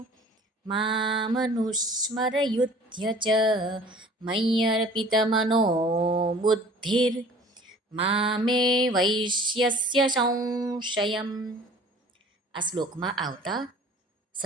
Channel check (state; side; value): normal; both; correlation 0.48